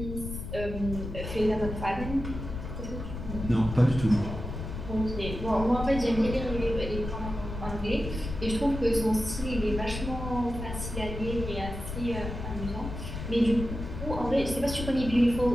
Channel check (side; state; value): left; noise; rumble, 7 dB below the sound